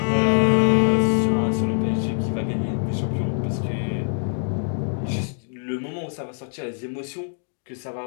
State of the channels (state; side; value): silent; right; 63 dB below the other